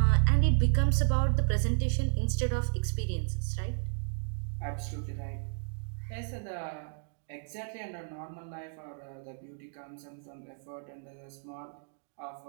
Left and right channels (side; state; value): left; silent; digital silence